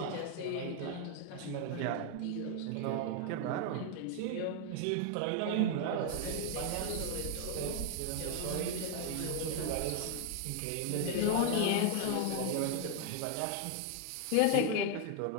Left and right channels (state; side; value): different; both; correlation 0.00